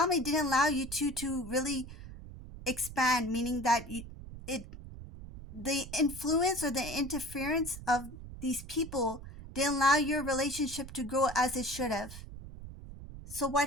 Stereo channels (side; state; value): right; noise; rumble, 13 dB below the sound